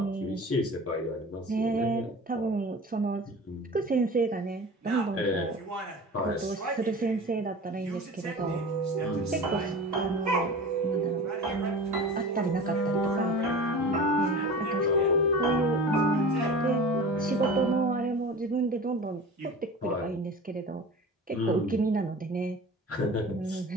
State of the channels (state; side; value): normal; both; correlation 0.37